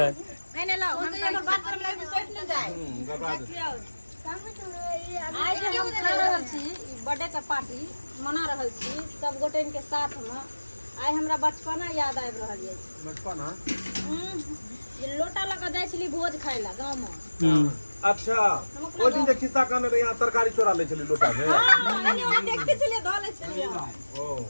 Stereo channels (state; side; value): inverted; both; correlation -1.00